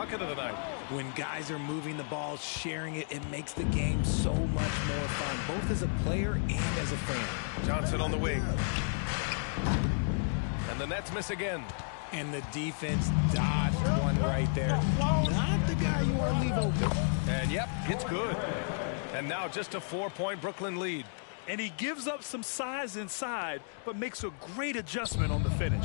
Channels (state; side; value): silent; right; digital silence